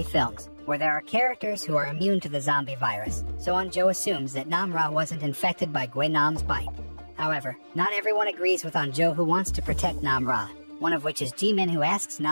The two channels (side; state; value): both; inverted; correlation -1.00